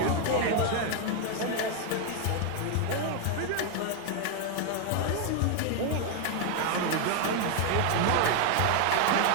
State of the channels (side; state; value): both; different; correlation 0.01